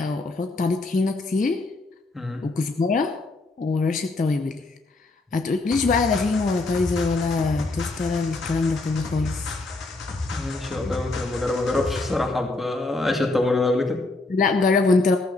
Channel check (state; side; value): quieter; right; 3.2 dB